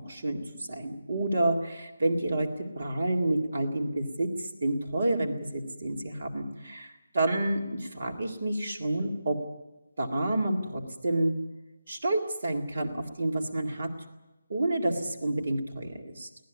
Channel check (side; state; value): both; inverted; correlation -0.90